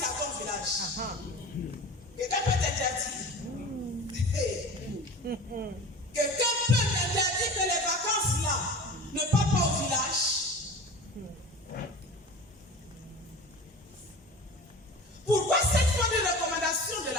à ton village? Quelqu'un peut t'interdire? Quelqu'un peut t'interdire que les vacances là ne parlent pas au village? Pourquoi cette fois de recommandation de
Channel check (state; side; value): normal; both; correlation 0.36